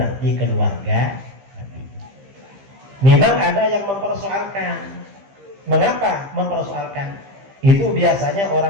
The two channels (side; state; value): left; late; 15 ms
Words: keluarga Nabi. Memang ada yang mempersoalkan. Mengapa mempersoalkan? Itu biasanya